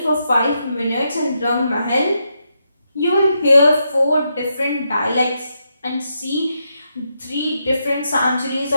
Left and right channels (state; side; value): inverted; both; correlation -0.82